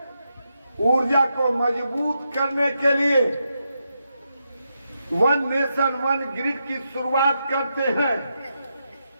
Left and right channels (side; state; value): both; inverted; correlation -0.84